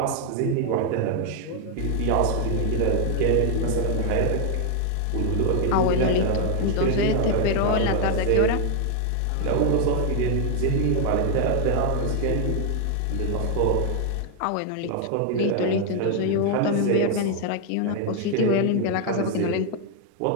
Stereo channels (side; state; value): both; different; correlation 0.00